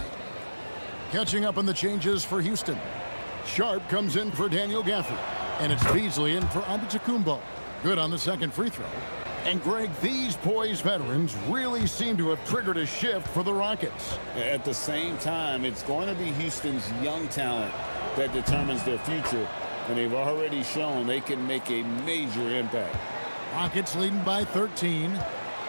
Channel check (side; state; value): both; inverted; correlation -1.00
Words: Catching up on the changes for Houston. Sharp comes in for Daniel Gafford. And it's Beasley in for Antetokounmpo. Good on the second free throw. And Greg, these poised veterans really seem to have triggered a shift for the Rockets. At the same time, it's going to be Houston's young talent that determines their future, and they've already shown they can make a major impact. Rockets leading by 13.